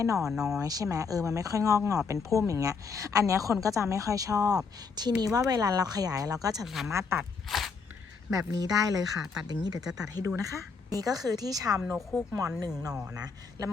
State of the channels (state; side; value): quieter; right; 5.1 dB